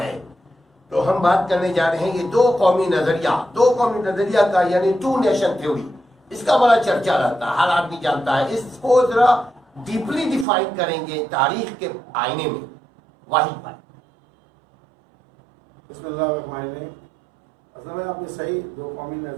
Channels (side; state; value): left; drops out; at 10.5 s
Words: ہے. تو ہم بات کرنے جا رہے ہیں یہ دو قومی نظریہ کا، یعنی ٹو نیشن تھیوری. اس کا بڑا چرچا رہتا ہے، ہر آدمی جانتا ہے. اس کو ذرا ڈیپلی ڈیفائن کریں گے تاریخ کے آئینے میں. واحد بھائی. بسم اللہ الرحمن الرحیم. اصل میں آپ نے صحیح دو قومی